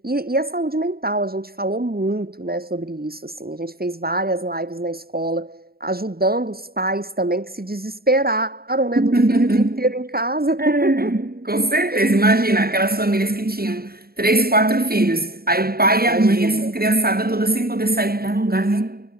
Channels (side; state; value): left; late; 0.44 ms